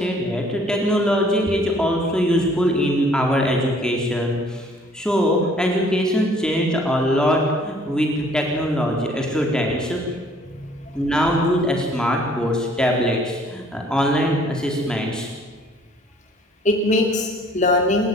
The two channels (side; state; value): both; normal; correlation 0.58